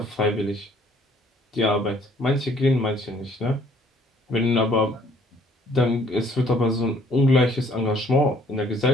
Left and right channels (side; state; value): both; normal; correlation 0.60